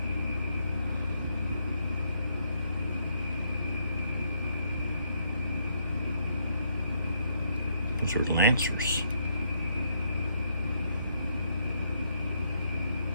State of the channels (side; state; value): both; inverted; correlation -0.74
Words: Those are lancers.